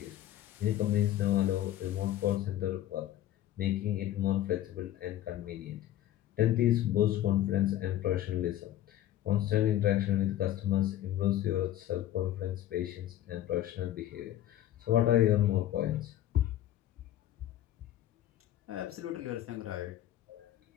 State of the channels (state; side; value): quieter; right; 12.8 dB